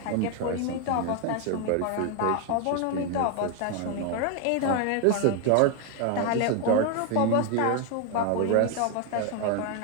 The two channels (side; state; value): both; different; correlation 0.01